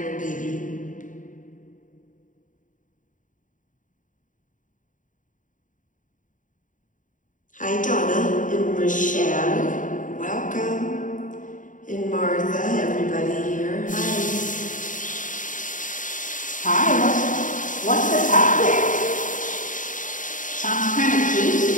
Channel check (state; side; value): late; right; 0.38 ms